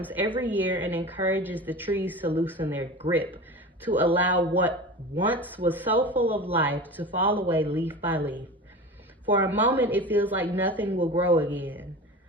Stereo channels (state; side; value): normal; both; correlation 0.32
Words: every year and encourages the trees to loosen their grip, to allow what once was so full of life to fall away leaf by leaf. For a moment, it feels like nothing will grow again.